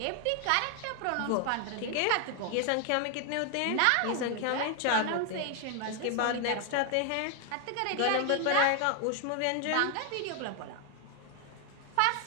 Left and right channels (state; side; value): different; both; correlation 0.00